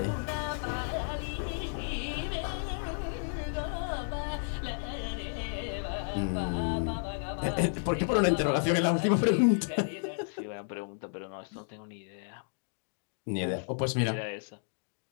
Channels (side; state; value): right; silent; digital silence